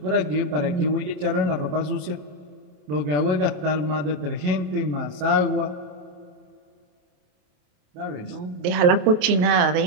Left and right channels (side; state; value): left; late; 28 ms